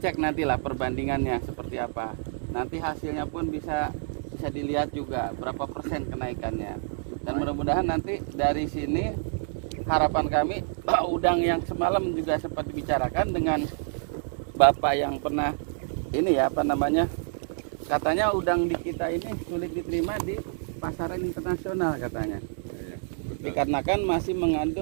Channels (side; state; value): left; silent; digital silence